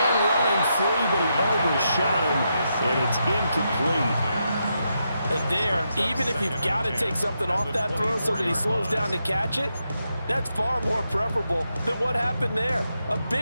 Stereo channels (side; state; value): both; inverted; correlation -0.83